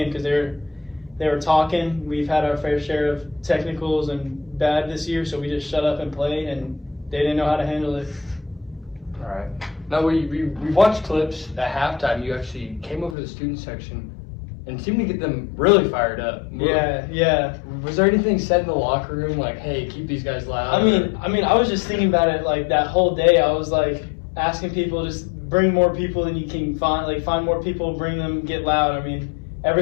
because they were talking. We've had our fair share of technicals and bad this year, so we just shut up and played, and they didn't know how to handle it. All right. Now, we watched clips at halftime. You actually came over to the student section and seemed to get them really fired up. Yeah. Was there anything said in the locker room like, hey, keep these guys loud? I was just thinking about it that whole day. I was asking people, just bring more people than you can find. Find more people, bring them, get loud.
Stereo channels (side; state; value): right; drops out; at 13.2 s